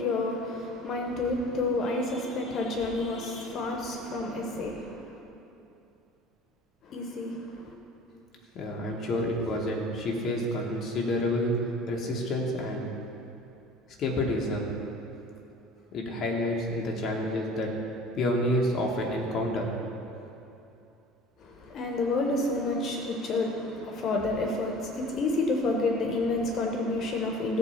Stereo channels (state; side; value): normal; both; correlation 0.44